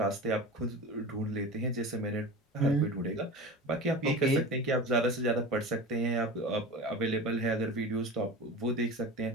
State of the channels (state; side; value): normal; both; correlation 0.32